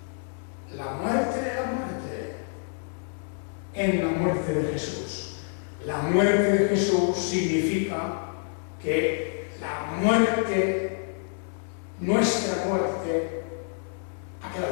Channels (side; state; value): right; silent; 60 dB below the other